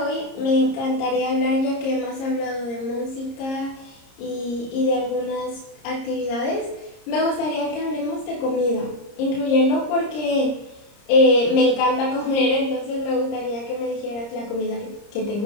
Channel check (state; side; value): late; right; 30 ms